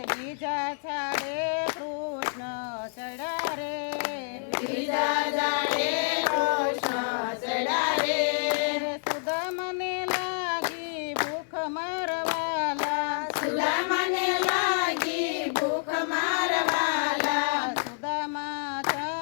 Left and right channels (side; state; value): right; silent; digital silence